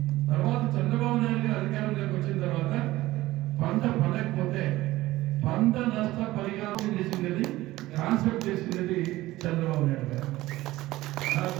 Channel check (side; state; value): left; quieter; 17.2 dB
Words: తర్వాత చంద్రబాబు నాయుడు గారు అధికారంలోకి వచ్చిన తర్వాత పంట పండకపోతే పంట నష్ట పరిహారం చేసింది, కాన్సెప్ట్ చేసింది చంద్రబాబు నాయుడు గారు.